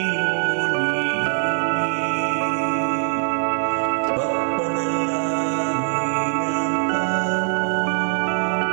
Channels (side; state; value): left; silent; 57 dB below the other